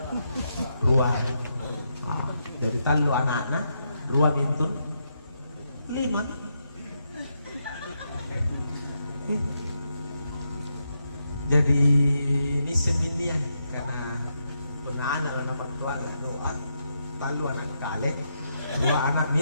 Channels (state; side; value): inverted; both; correlation -0.82